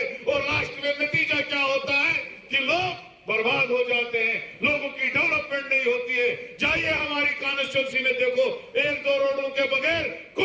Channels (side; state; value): both; identical; correlation 1.00